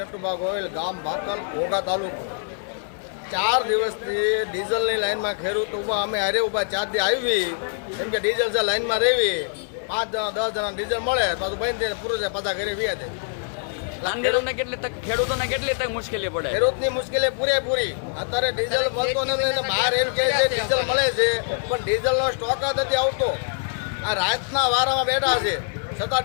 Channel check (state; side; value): silent; right; digital silence